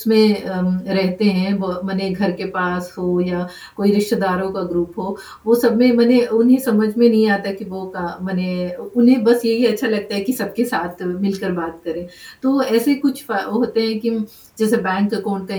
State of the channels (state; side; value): identical; both; correlation 1.00